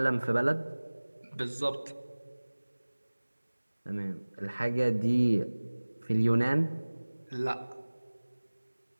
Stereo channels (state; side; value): inverted; both; correlation -1.00